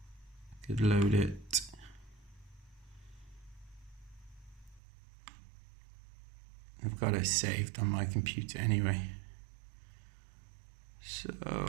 I could load it. I've got it saved on my computer anyway. So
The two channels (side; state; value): left; drops out; at 4.8 s